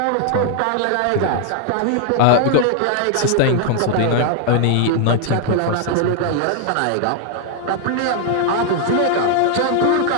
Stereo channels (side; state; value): both; different; correlation 0.00